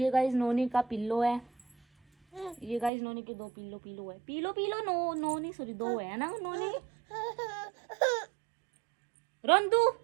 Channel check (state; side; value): drops out; left; at 2.9 s